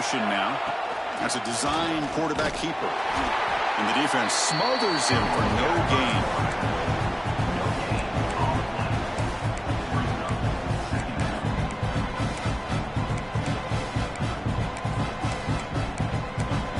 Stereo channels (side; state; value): both; identical; correlation 1.00